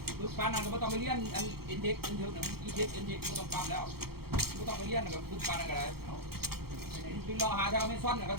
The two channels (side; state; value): left; late; 0.95 ms